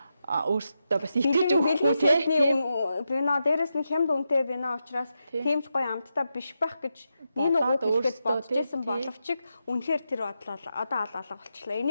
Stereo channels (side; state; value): both; inverted; correlation -0.87